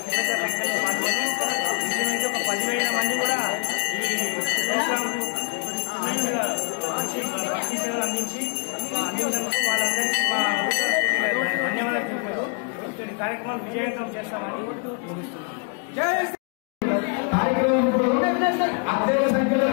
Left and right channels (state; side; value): quieter; right; 36.9 dB